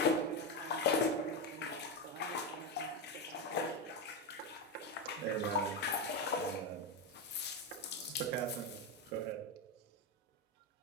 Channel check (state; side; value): normal; both; correlation 0.11